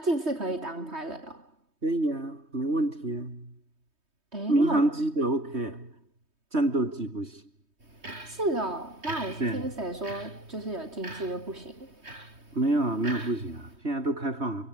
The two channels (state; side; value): late; left; 3.2 ms